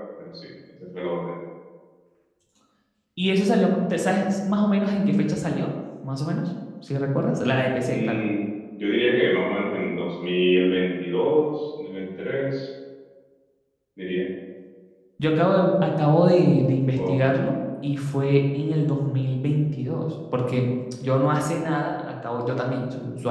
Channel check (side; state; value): both; identical; correlation 1.00